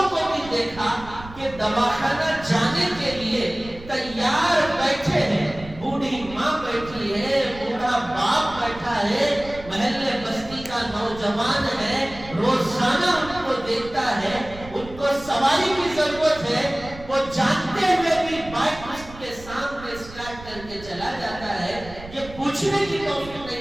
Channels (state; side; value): noise; right; rumble, 16 dB below the sound